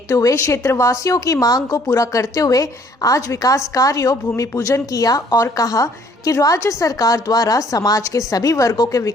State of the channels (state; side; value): normal; both; correlation 0.60